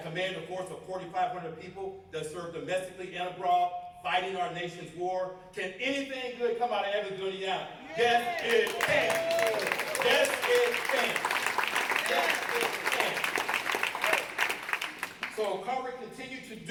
a force of 4,500 people that serve domestically and abroad, fighting our nation's war. Can anything good come out of Evansville, Indiana? Yes, it can. Yes, it can. Yes, it can. So Carver, continue to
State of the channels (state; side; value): identical; both; correlation 1.00